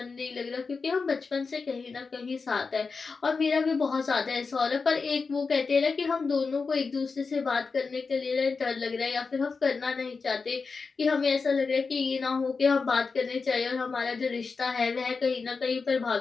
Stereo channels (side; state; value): right; quieter; 4.6 dB